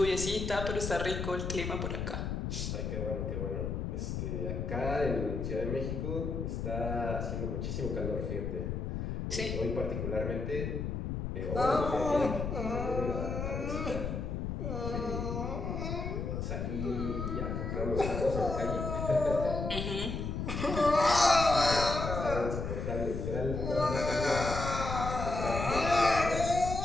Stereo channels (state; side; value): noise; left; rumble, 3 dB below the sound